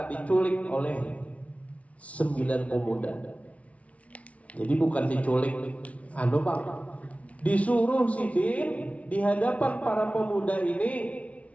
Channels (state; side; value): late; right; 0.065 ms